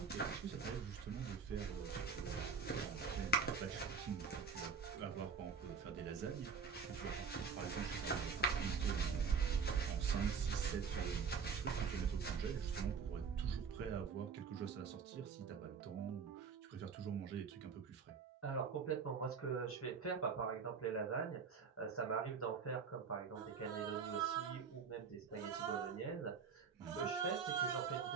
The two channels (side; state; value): left; quieter; 5.9 dB